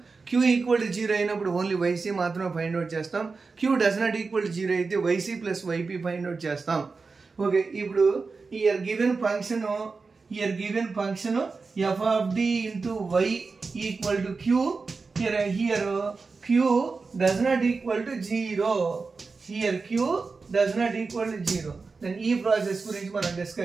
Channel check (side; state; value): left; quieter; 4.4 dB